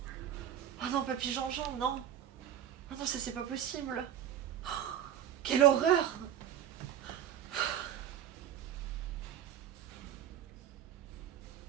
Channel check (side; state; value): left; quieter; 10.2 dB